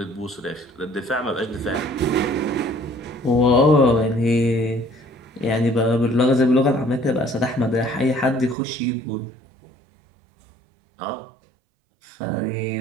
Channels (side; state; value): left; drops out; at 8.6 s